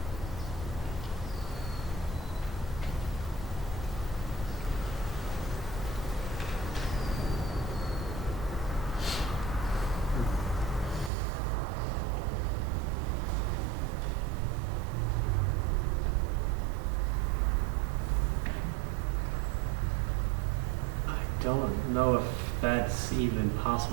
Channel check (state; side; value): drops out; left; at 11.1 s